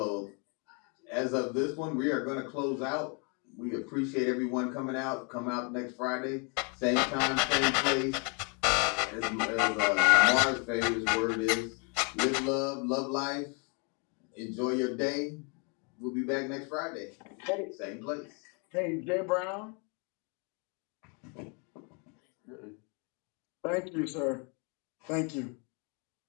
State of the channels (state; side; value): quieter; right; 35.2 dB